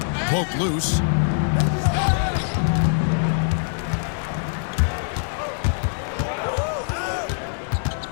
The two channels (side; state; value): right; silent; digital silence